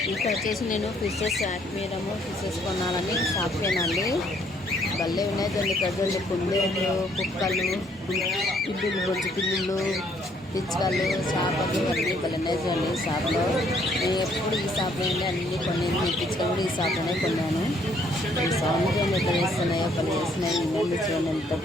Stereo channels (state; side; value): normal; both; correlation 0.66